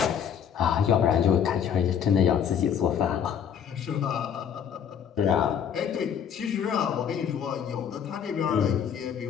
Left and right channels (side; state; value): right; quieter; 8.2 dB